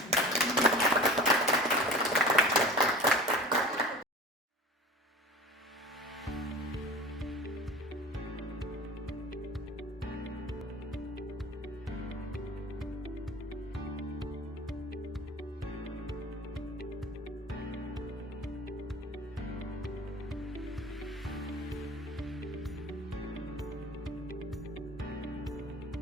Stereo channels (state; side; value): normal; both; correlation 0.38